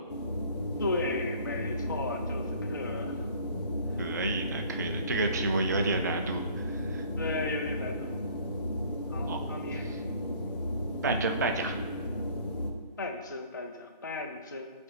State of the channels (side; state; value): both; inverted; correlation -0.53